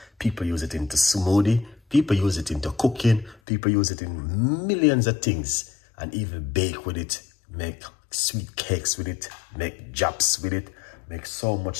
People use it into smoothie, people use it into cooking, people use it in millions of things, and even bake with it, make sweet cakes with it, make japs with it, make so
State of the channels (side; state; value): right; drops out; at 3.4 s